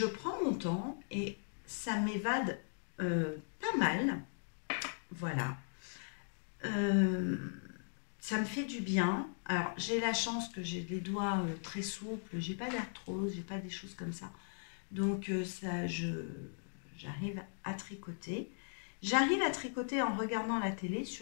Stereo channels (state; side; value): silent; right; digital silence